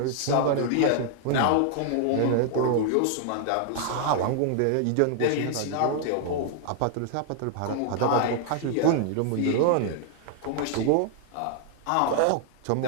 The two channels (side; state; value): both; different; correlation 0.00